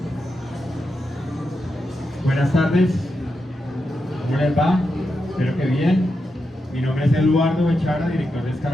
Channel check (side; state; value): both; normal; correlation 0.87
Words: Buenas tardes. ¿Cómo les va? Espero que bien. Mi nombre es Eduardo Bechara, director de